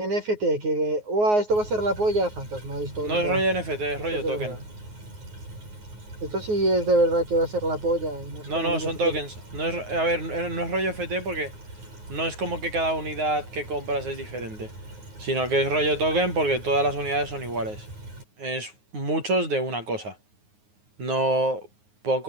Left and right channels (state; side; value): late; left; 9.5 ms